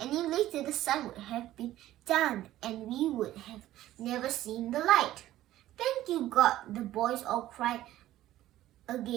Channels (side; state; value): left; quieter; 14.2 dB